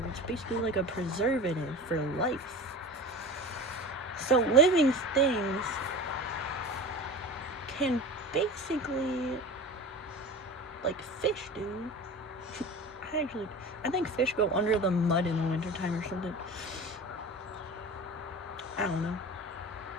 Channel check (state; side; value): normal; both; correlation 0.34